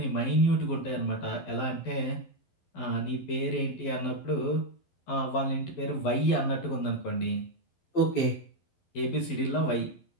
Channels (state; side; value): late; right; 12 ms